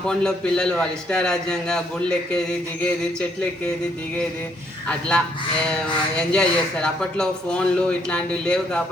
పిల్లలు వాళ్ళ ఇష్టారాజ్యంగా గుళ్ళు ఎక్కేది, దిగేది, చెట్లు ఎక్కేది, దిగేది, అట్లా ఎంజాయ్ చేస్తారు. అప్పట్లో ఫోన్లు ఇట్లాంటివి లేవు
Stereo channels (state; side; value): normal; both; correlation 0.70